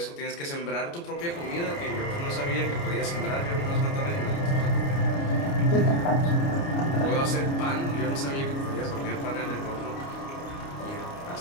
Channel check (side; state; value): right; late; 29 ms